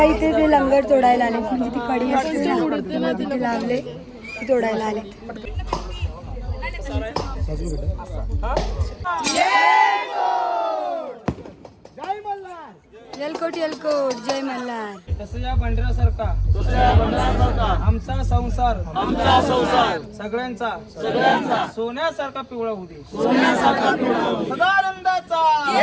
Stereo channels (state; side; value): identical; both; correlation 1.00